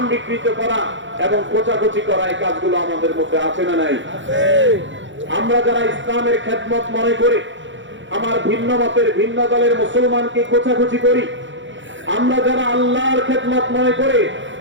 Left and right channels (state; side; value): late; left; 0.54 ms